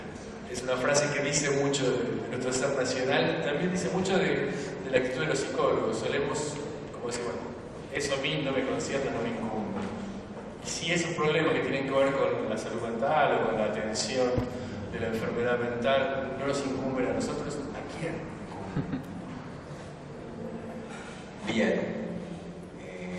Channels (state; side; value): identical; both; correlation 1.00